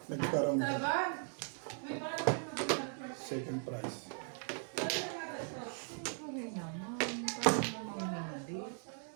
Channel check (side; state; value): left; silent; 52 dB below the other